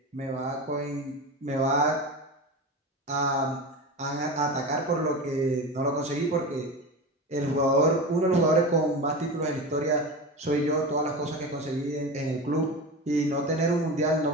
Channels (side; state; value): both; normal; correlation 0.26